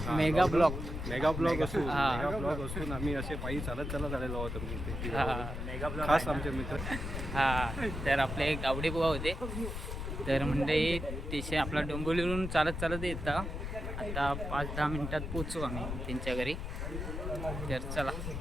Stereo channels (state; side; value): noise; left; rumble, 5 dB below the sound